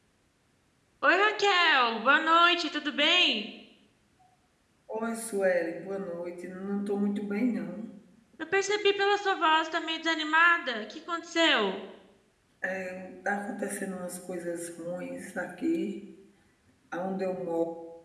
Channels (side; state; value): both; identical; correlation 1.00